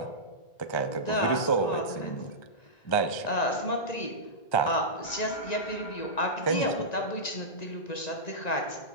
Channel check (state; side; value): late; right; 1.9 ms